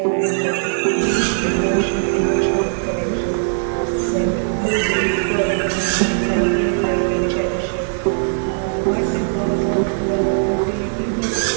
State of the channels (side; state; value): left; silent; 66 dB below the other